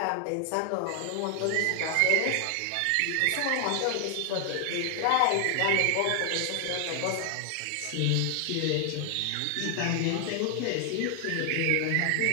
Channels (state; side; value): different; both; correlation 0.00